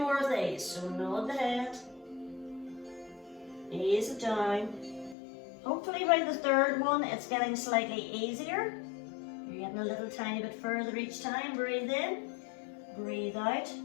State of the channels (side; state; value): right; drops out; at 5.2 s